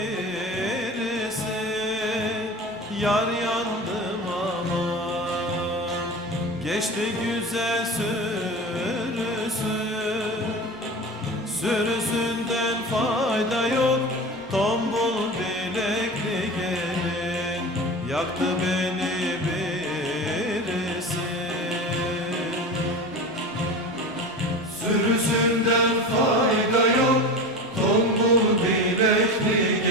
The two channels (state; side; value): normal; both; correlation 0.31